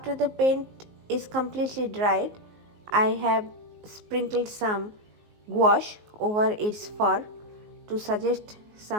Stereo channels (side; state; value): left; late; 19 ms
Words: the paint is completely dried, I have sprinkled some gouache over its fur to suggest